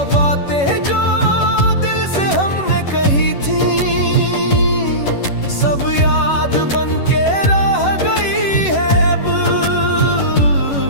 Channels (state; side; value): late; right; 11 ms